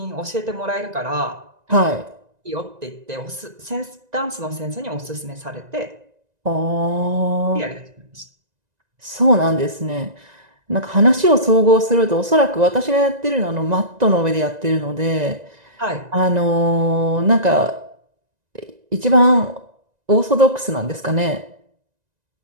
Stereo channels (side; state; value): left; late; 1.9 ms